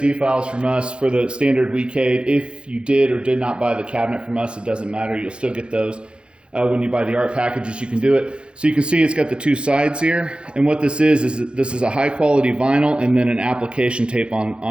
files from us for the standard Weecade. If you did or did not buy the cabinet from us, it doesn't matter. You'll still get those. When you buy the art packages, you can do it. So you can see it's got the two sides here. And what this is this is a high quality vinyl and then an application tape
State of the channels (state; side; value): late; left; 0.055 ms